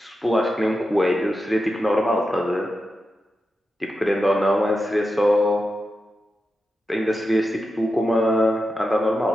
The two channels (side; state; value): both; normal; correlation 0.90